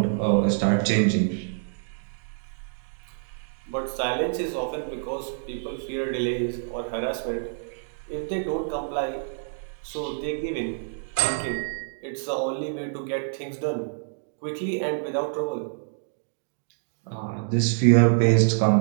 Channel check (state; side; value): silent; left; digital silence